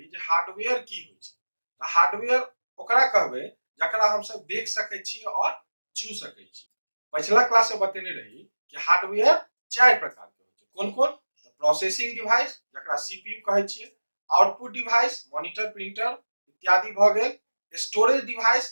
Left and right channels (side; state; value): both; inverted; correlation -1.00